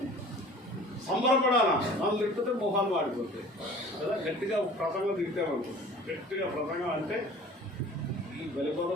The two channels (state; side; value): normal; both; correlation 0.46